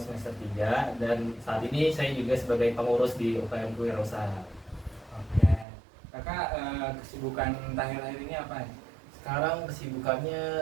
3 dan saat ini saya juga sebagai pengurus di UKM Kewirausahaan. Oke. Kakak kesibukan akhir-akhir ini apa? Sekarang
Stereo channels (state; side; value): drops out; left; at 5.7 s